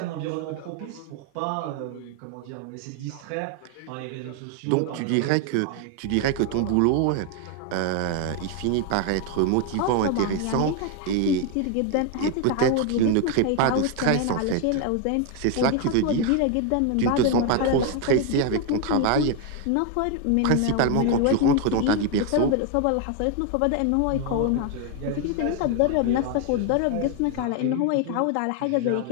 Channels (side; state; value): both; different; correlation 0.01